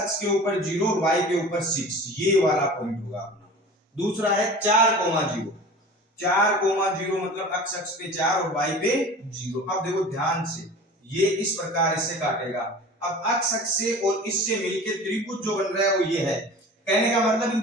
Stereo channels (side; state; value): both; normal; correlation 0.39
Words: के ऊपर 0 और y के ऊपर 6, ये वाला पॉइंट होगा अपना। दूसरा है 4,0 4,0 मतलब अक्ष पे 4 और y पे 0। अब देखो ध्यान से, ये इस प्रकार इससे काटेगा। अब अक्ष से और इससे मिलकर त्रिभुज जो बन रहा है वो ये है, कहने का मतलब इन